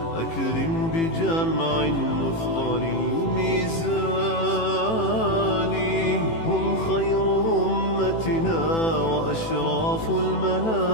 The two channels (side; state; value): right; late; 18 ms